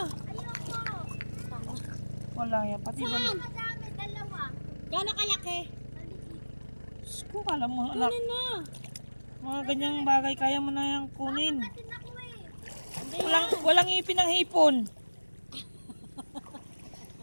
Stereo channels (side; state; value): both; inverted; correlation -1.00